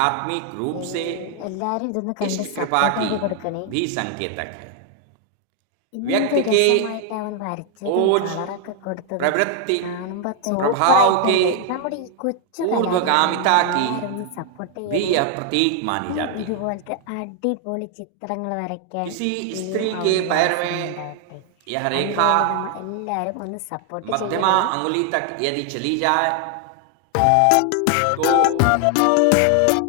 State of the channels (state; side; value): different; both; correlation 0.00